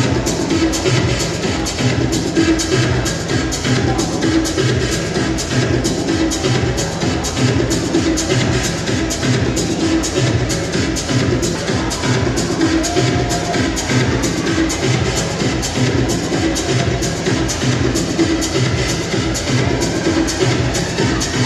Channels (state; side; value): identical; both; correlation 1.00